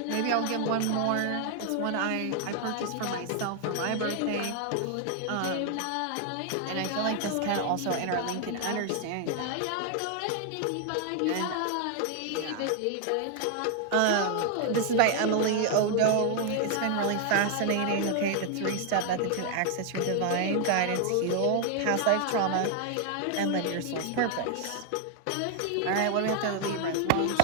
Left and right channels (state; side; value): different; both; correlation 0.00